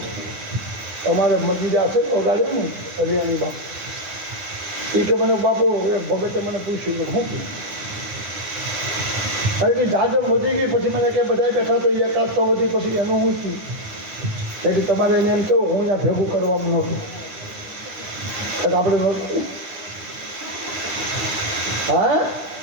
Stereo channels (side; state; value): left; late; 9.8 ms